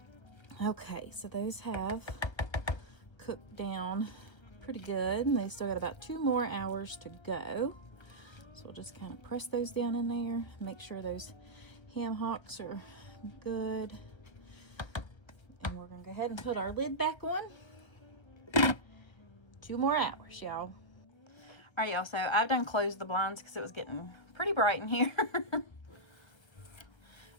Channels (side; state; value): right; late; 1.3 ms